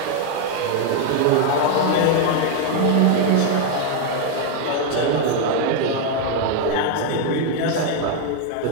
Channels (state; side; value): different; both; correlation 0.01